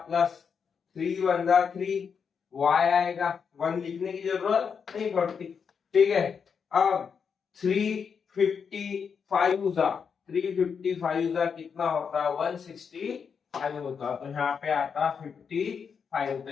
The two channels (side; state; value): right; quieter; 6.4 dB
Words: प्लस 3 वन जा 3, y आएगा, 1 लिखने की जरूरत नहीं पड़ती। ठीक है, अब 355 जा 355 जा कितना होता है 165 होता, तो यहाँ पे आता 55। तो